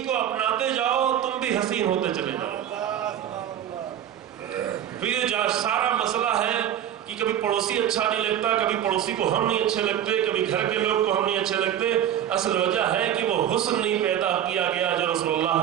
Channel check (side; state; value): left; quieter; 10.5 dB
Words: کو اپناتے جاؤ، تم بھی حسین ہوتے چلے جاؤ۔ پھر جو سارا مسئلہ ہے کہ کبھی پڑوسی اچھا نہیں لگتا، کبھی پڑوسی کو ہم نہیں اچھے لگتے، کبھی گھر کے لوگ کو ہم نہیں اچھے لگتے، اصل وجہ ہے کہ وہ حسن نہیں پیدا کیا گیا جو رسول اللہ